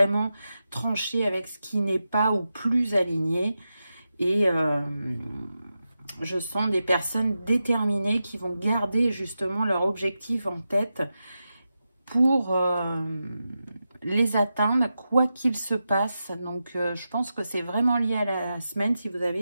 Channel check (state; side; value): inverted; both; correlation -0.90